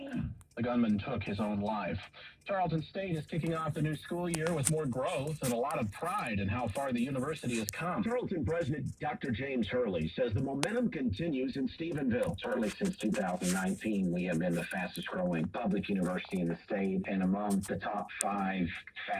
The gunman took his own life. Tarleton State is kicking off the new school year with more growth and a lot of pride in how far the university has come. Tarleton President Dr. James Hurley says the momentum continues in Stephenville. Certainly since 2019, we have been the fastest growing public university in the state and among the top 5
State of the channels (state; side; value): identical; both; correlation 1.00